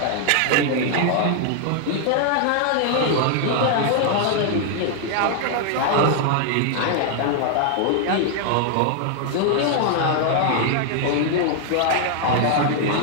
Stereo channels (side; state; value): both; different; correlation 0.00